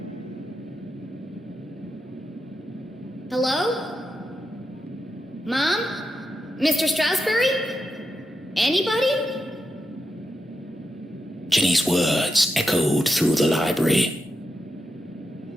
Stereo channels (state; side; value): normal; both; correlation 0.87